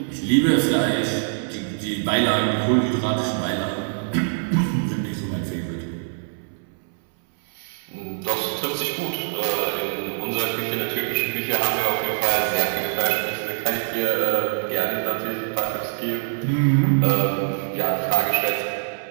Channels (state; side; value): silent; left; 63 dB below the other